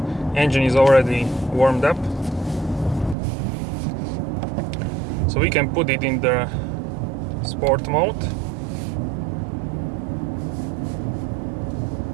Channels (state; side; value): drops out; left; at 3.2 s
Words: Engine is already warmed up, so we can put it in the sport mode.